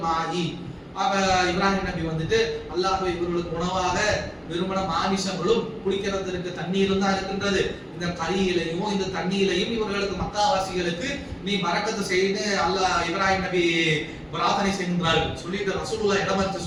இப்ராஹிம் நபி வந்துட்டு அல்லாஹ்வே இவர்களுக்கு உணவாக வெறுமன மாமிசங்களும் குடிக்கிறதற்கு தண்ணீரும் தான் இருக்கின்றது, இந்த கறியிலையும் இந்த தண்ணீரையும் இவர்களுக்கு மக்காவாசிகளுக்கு நீ பரக்கத்து செய்து அல்லாஹ் இப்ராஹிம் நபி பிரார்த்தனை செய்கின்றார்கள். சொல்லிட்டு ரசூலுல்லாஹ்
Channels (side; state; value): both; identical; correlation 1.00